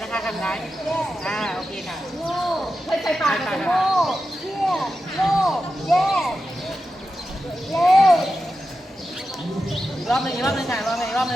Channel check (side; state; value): both; normal; correlation 0.90